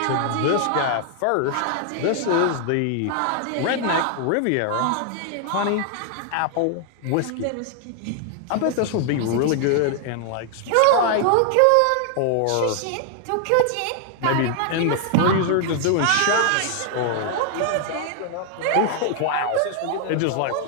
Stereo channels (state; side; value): different; both; correlation 0.00